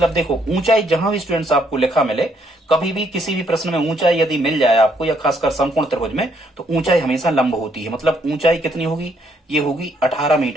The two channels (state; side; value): normal; both; correlation 0.70